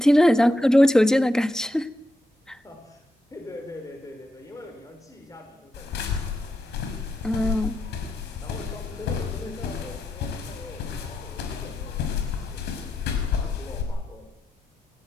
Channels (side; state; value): both; normal; correlation 0.85